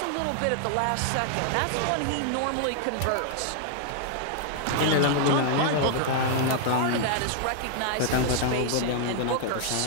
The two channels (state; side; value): different; both; correlation 0.00